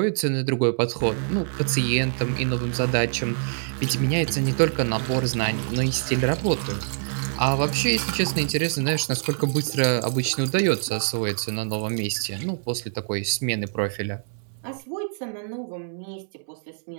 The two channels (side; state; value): left; silent; 62 dB below the other